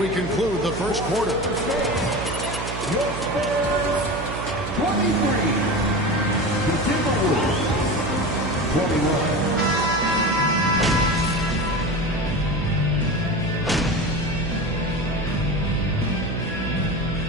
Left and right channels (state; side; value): noise; right; hum, 7 dB below the sound